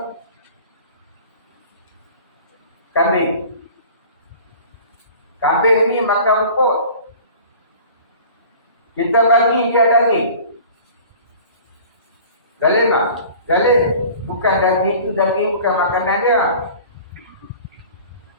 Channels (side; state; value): both; inverted; correlation -0.44